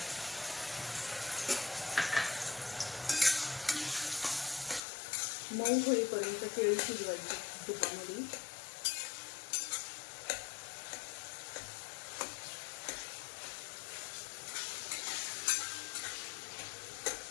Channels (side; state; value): right; drops out; at 4.8 s